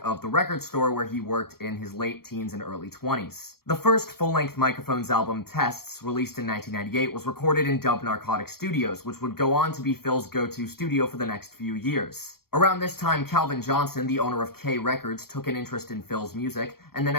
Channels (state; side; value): late; right; 0.94 ms